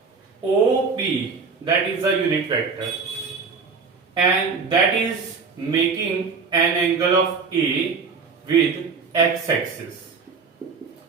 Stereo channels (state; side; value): quieter; left; 5.0 dB